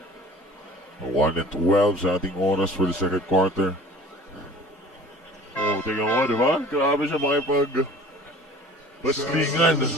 A 1-12 sa ating oras for the second quarter. Oh, tingnan mo, di ba? Grabe siya baslingan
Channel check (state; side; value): normal; both; correlation 0.46